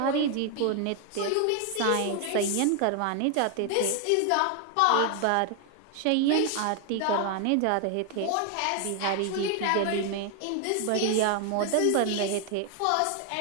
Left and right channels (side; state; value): both; different; correlation 0.00